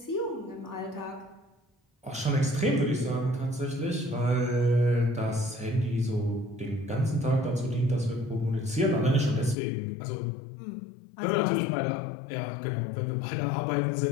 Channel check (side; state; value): right; drops out; at 9.6 s